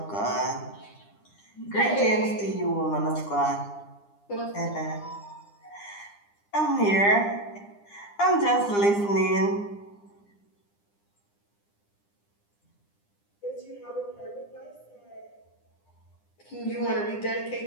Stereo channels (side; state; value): right; late; 9.9 ms